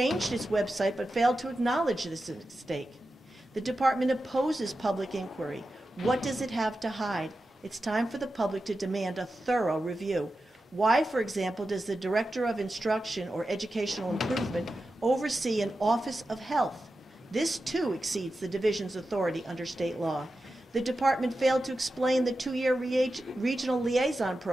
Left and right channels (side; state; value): both; normal; correlation 0.91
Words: its website but failed to acknowledge this mistake. The department opposes public inquiry. What does it have to hide? It's time for the public to demand a thorough review. Why, for example, does the Director of Instruction or Educational Improvement oversee an Office of Health? This, too, exceeds the division's authority under state law. The department failed to explain the 2-year regional liaison